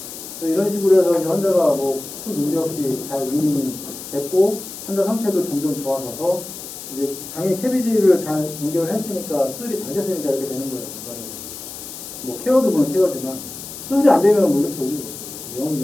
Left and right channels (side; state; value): left; noise; hiss, 11 dB below the sound